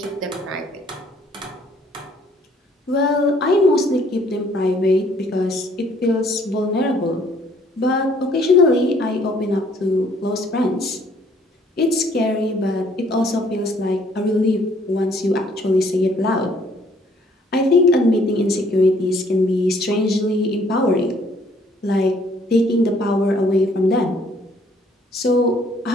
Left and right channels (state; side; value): normal; both; correlation 0.62